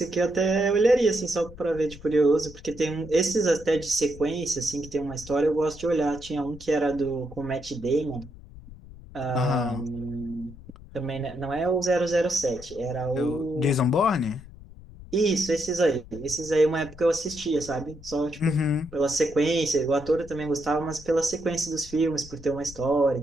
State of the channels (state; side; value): noise; left; rumble, 18 dB below the sound